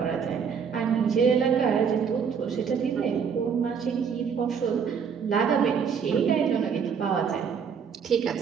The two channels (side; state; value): left; quieter; 6.6 dB